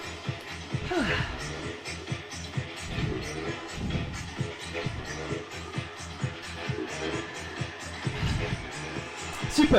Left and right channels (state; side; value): identical; both; correlation 1.00